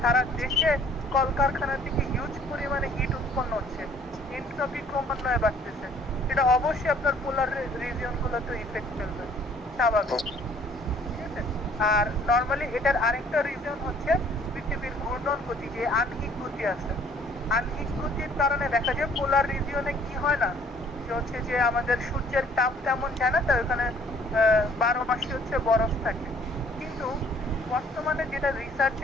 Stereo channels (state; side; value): normal; both; correlation 0.58